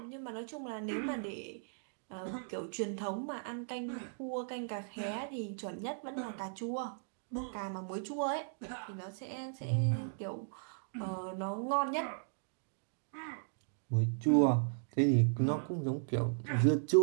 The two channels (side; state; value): left; silent; digital silence